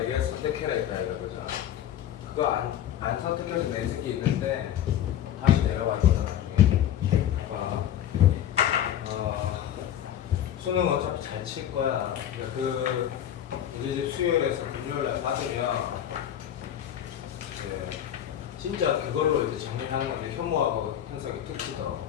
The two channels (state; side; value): quieter; right; 10.7 dB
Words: 선택해라 했다 이거죠. 그거 안 선택해서 내 새끼 있는데 다시 내려와 줘 나중에. 봐봐. 수능 어차피 잘 칠 거야. 그러니까 그 이제 수요일에서 금요일날 받으면 이제 진짜 그걸로 이제 정리하는 게 현무하고 현석이 특징이다.